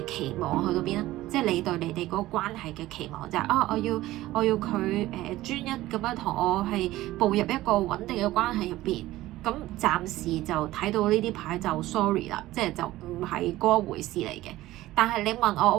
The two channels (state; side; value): quieter; left; 16.4 dB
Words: 期望去到邊啦，即係你對你哋嗰個關係嘅期望就係我要佢專一咁樣同我係步入一個穩定嘅關係入邊。咁暫時就睇到呢啲牌就 sorry 啦，即係就唔係嗰回事嚟嘅。但係你問